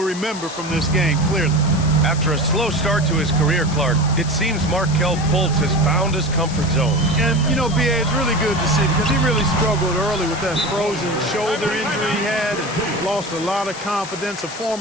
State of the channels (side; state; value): left; noise; hiss, 12 dB below the sound